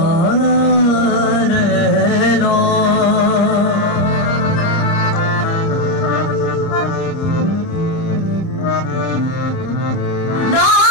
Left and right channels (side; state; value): right; late; 30 ms